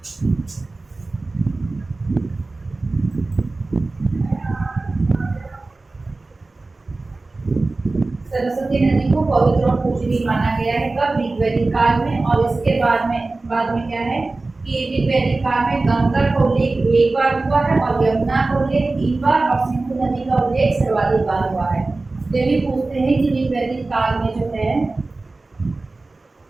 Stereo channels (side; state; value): left; quieter; 3.3 dB